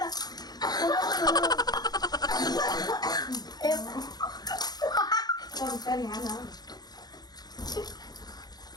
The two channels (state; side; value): late; right; 0.19 ms